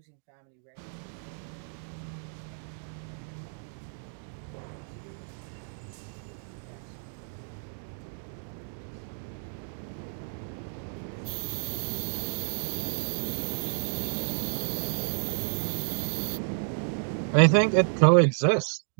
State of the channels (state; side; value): silent; left; digital silence